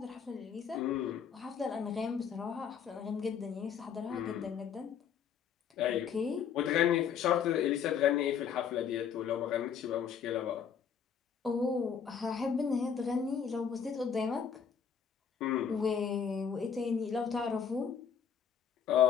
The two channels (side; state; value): right; quieter; 7.4 dB